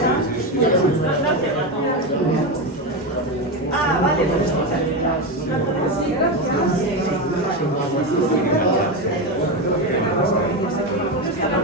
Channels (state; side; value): normal; both; correlation 0.15